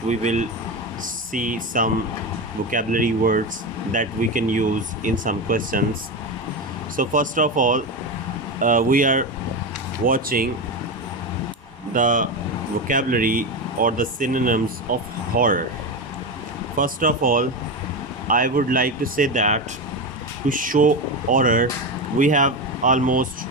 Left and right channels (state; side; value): normal; both; correlation 0.17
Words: we will see some vocabulary words that we can use in some questions. So, first of all, we are watching the vocabulary or the synonyms of horror. First of all, I would like to say that to show horror, we have almost